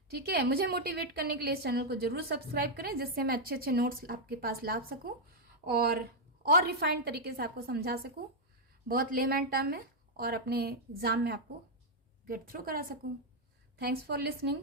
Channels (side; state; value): both; normal; correlation -0.02